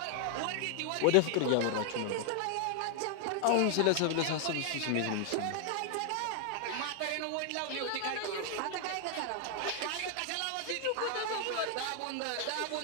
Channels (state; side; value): different; both; correlation 0.00